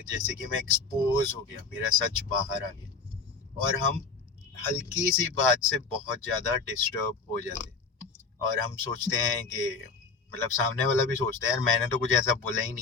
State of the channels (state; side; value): quieter; right; 4.7 dB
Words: जैसे कि मैं एक्सपोज हो गया, मेरा सच बाहर आ गया। और हम हल्की सी बात से बहुत ज़्यादा डिस्टर्ब हो जाते हैं। और हम सोचते हैं कि मतलब सामने वाला भी सोचता है यार मैंने तो कुछ ऐसा बोला ही